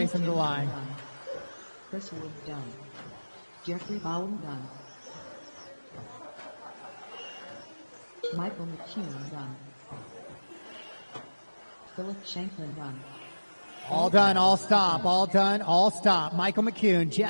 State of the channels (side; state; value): both; inverted; correlation -1.00